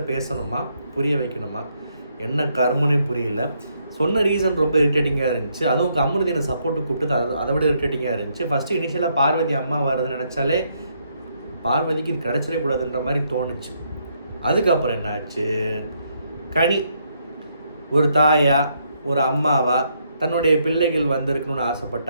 பேசணுமா, புரிய வைக்கணுமா? என்ன கர்மனே புரியல. சொன்ன ரீசன் ரொம்ப இரிட்டேட்டிங்காக இருந்துச்சு. அதுவும் அமிர்தினை சப்போர்ட்டு கூப்பிட்டு அதை விட இரிட்டேட்டிங்காக இருந்துச்சு. ஃபஸ்ட்டு இனிஷியலாக பார்வதி அம்மா வருதுன்னு நினச்சாலே பார்வதிக்கு இது கிடச்சிடவே கூடாதுன்ற மாதிரி தோணுச்சு. அதுக்கப்புறம் என்ன ஆச்சு, கனி ஒரு தாயா ஒரு அம்மாவா தன்னுடைய பிள்ளைகள் வந்திருக்கணும்னு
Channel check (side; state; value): both; inverted; correlation -0.74